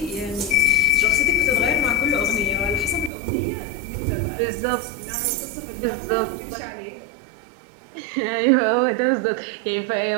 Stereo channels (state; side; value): drops out; left; at 3.1 s